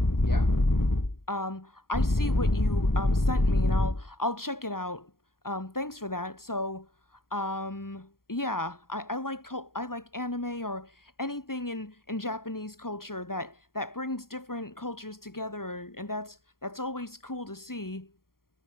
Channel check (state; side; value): late; right; 0.92 ms